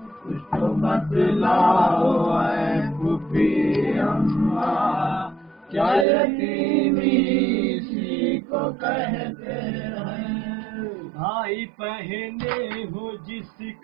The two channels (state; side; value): drops out; left; at 6.1 s